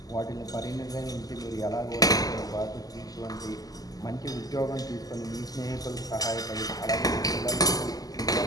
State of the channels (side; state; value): right; late; 0.18 ms